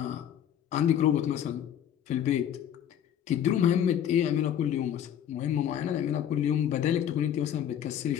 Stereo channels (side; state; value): right; quieter; 9.9 dB